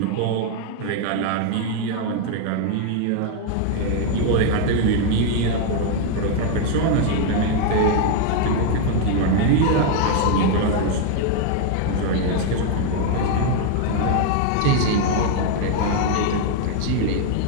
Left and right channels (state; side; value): different; both; correlation 0.00